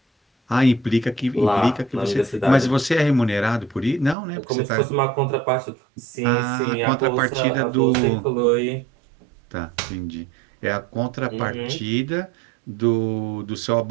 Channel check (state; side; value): drops out; left; at 4.2 s